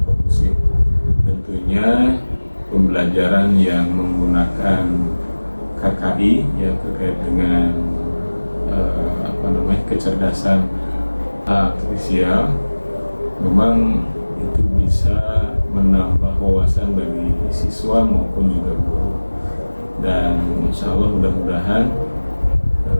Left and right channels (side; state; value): both; inverted; correlation -1.00